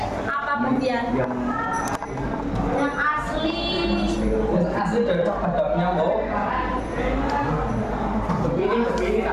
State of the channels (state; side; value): identical; both; correlation 1.00